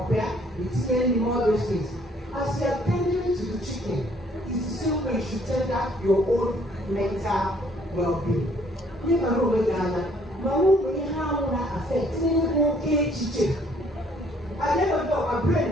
it's getting all those things. As you are tending to the chicken, it's the same way you should tend to your own mental well-being. You never know when you have that affect okay chicken. I never know my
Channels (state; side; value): normal; both; correlation 0.62